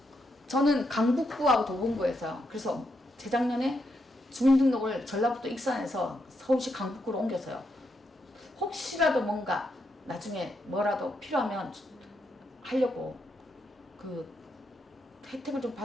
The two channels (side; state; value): both; normal; correlation 0.81